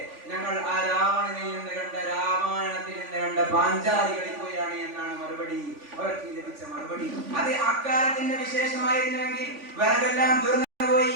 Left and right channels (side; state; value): left; late; 3.5 ms